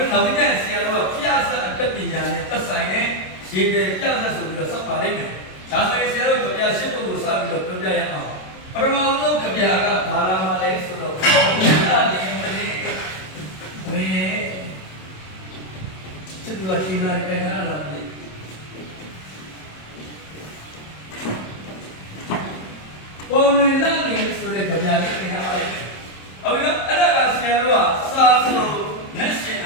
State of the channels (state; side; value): late; right; 27 ms